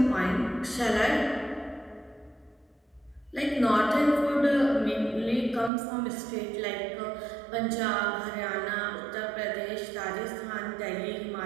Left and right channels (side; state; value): left; drops out; at 5.7 s